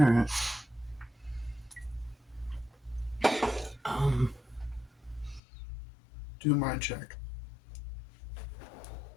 Do mind check.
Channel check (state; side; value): drops out; right; at 5.4 s